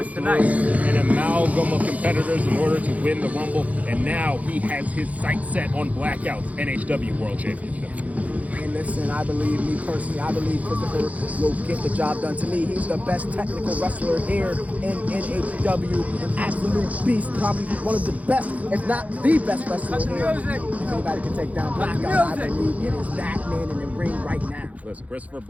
through an amalgam of competitors in order to win the Rumble, and now he has his sights set on Blackout's NHW World Championship. And listen, I believe Christopher will get the job done. To me, he's the best technical wrestler here in NHW. An absolute beast, probably one of the best, if not the best wrestler here. If anybody can take down Blackout, I believe it is that man in the ring right now. Listen, Christopher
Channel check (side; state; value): left; late; 0.070 ms